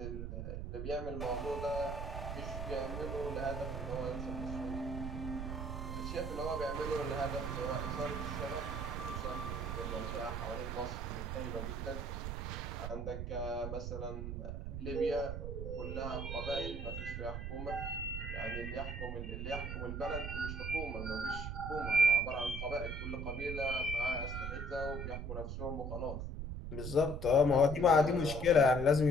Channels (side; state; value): right; noise; rumble, 5 dB below the sound